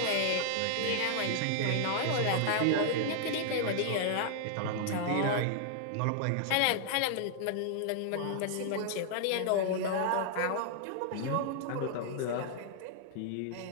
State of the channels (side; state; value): both; different; correlation -0.01